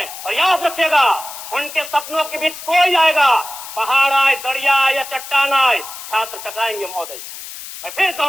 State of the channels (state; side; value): noise; left; hiss, 12 dB below the sound